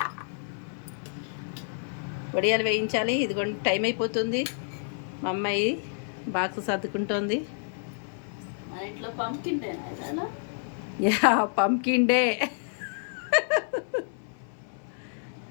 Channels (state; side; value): silent; right; 59 dB below the other